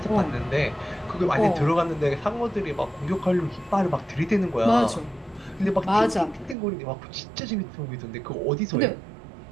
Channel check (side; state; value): left; drops out; at 6.6 s